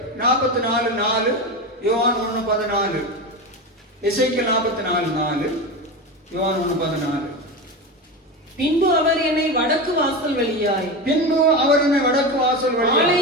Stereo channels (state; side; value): normal; both; correlation 0.21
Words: 44:4, யோவான் 1:14. எசேக்கியேல் 44:4, யோவான் 1:14. பின்பு அவர் என்னை வடக்கு வாசல் வழியாய்